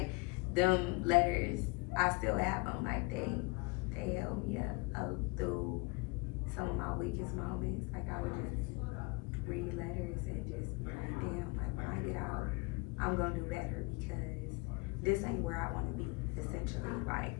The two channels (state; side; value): quieter; right; 26.8 dB